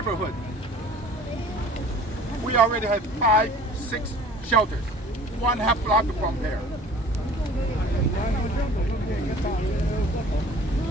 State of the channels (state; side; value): normal; both; correlation 0.47